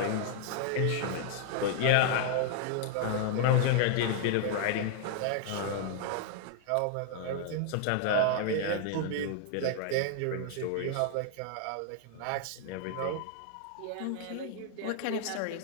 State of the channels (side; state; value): both; different; correlation 0.00